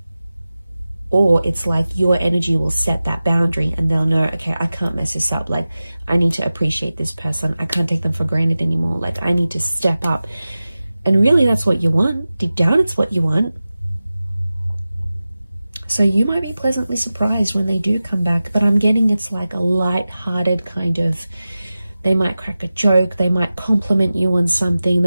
Or it's like your energy will set that boundary, and they'll know, okay, I can't mess this up. Like, I need to appreciate this person. I can't take them for granted anymore. Like, I need to step up. And really, that's what you want. Deep down, it's what you want. So you might be pleasantly surprised when they do come back. But I'm getting it's like a light-hearted kind of, they might crack a joke. They might compliment you on something.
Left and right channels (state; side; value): inverted; both; correlation -0.95